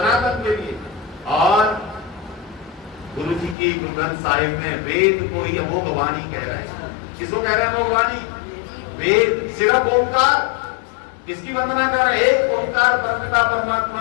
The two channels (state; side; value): drops out; right; at 3.6 s